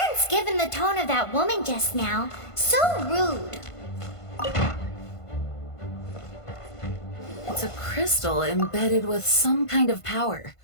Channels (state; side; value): late; right; 1.5 ms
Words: given the tone of that woman just now. So rude. It's a crystal embedded with some kind of power.